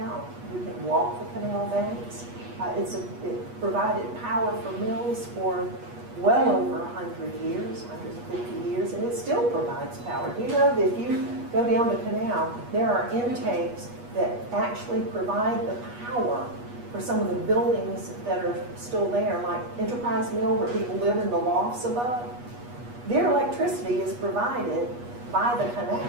you can walk the canal banks. It provided power for mills for well over 100 years, 150 years, and it still provides power. Do you know that if you go down the canal, there are intakes that actually provide the power for some of the buildings that are still there, like Enterprise Mill, where people live in the lofts above. Their electricity is provided by the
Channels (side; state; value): left; late; 8.3 ms